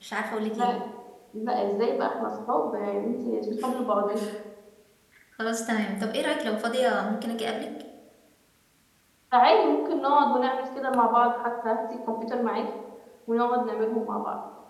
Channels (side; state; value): both; identical; correlation 1.00